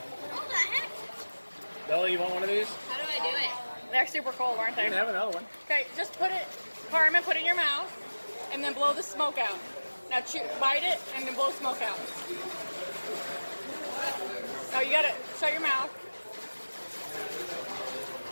What the heck? Bella, you want one of these? How do I do it? They're super cold, aren't You they? can have another one. Okay, just put it, Carmen, put it in your mouth, and then blow the smoke out. Now bite it, and then blow smoke out. Oh, you gotta shut your mouth.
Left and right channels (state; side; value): inverted; both; correlation -1.00